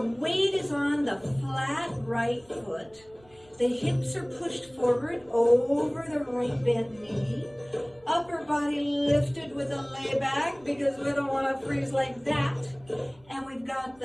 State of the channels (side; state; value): right; noise; rumble, 29 dB below the sound